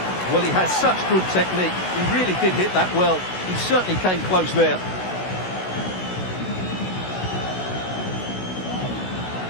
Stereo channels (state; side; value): late; right; 16 ms